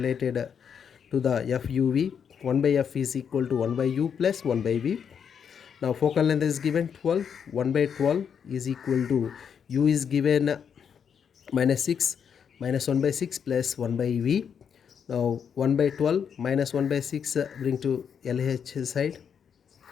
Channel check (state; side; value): quieter; right; 7.4 dB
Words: to the FUV. 1 by F is equal to 1 by U plus 1 by V. Now focal length is given 12. 1 by 12 is equal to U is given minus 6 minus 1 by 6 plus 1 by V. Now 1 by 12 minus 1 by 6 bring to LH side.